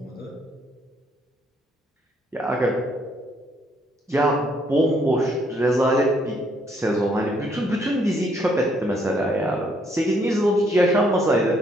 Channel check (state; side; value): normal; both; correlation 0.69